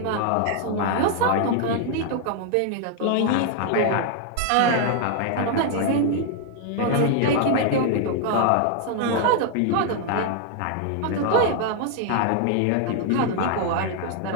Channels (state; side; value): different; both; correlation 0.00